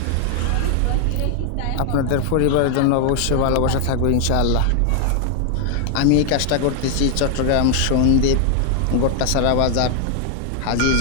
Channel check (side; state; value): both; different; correlation 0.00